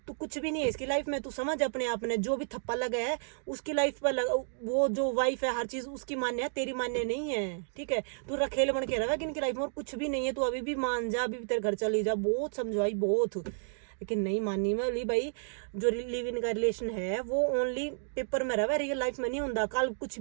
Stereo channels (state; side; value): silent; left; digital silence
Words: तू कुछ भी नहीं है इसकी लाइफ में, तू समझ अपने आप ने, जो भी थप्पा लगा है उसकी लाइफ पर लगा, वो जो वाइफ है हर चीज उसकी मान्य है, तेरी मान्य नहीं है। ठीक है, तू रखेल बन के रहा है इनकी लाइफ में, और कुछ भी नहीं है। तू अभी भी मान जा, अभी भी तेरे घर चली जा, बहुत समझाई बहुत, लेकिन नहीं मानी। मैं बोली भाई जो लिव इन का रिलेशन है वो ओनली पेपर में रहा, रियल लाइफ में नहीं होता। कल कुछ